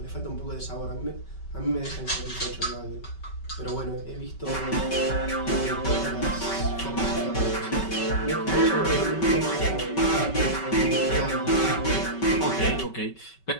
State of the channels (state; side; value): late; right; 5.3 ms